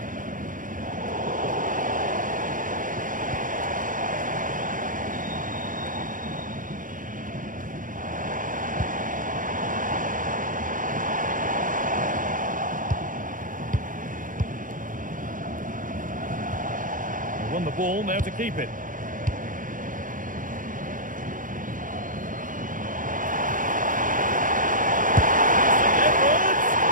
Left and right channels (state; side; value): late; left; 0.39 ms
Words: Won the ball, now to keep it.